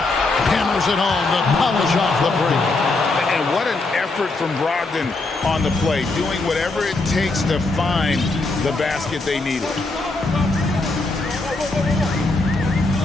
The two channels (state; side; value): quieter; right; 3.3 dB